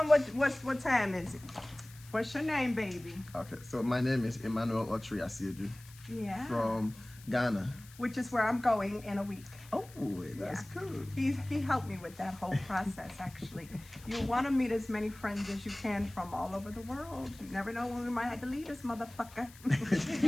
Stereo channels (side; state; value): left; noise; hiss, 21 dB below the sound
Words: what time is it? What's your name, baby? Okay, so my name is Emmanuel Otri Asiedu Yeah. from Ghana. Which is where I'm going in a week. Oh, that's cool. He helped me with that whole process, actually. You want to meet as many friends as you can from all over the world. You never know when we might have to leave this motherfucker.